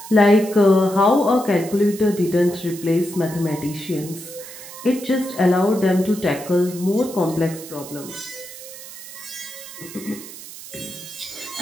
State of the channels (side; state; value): right; noise; hiss, 14 dB below the sound